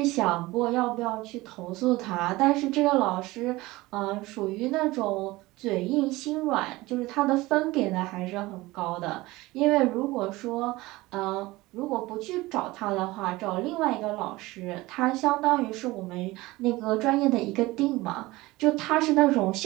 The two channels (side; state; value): left; quieter; 20.0 dB